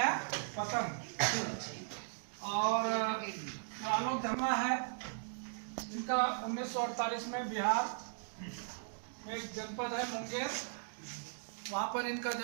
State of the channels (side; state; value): left; silent; digital silence